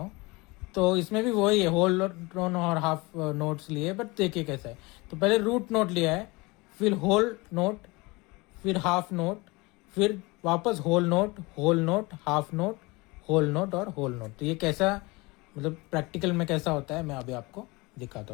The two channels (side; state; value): right; quieter; 24.6 dB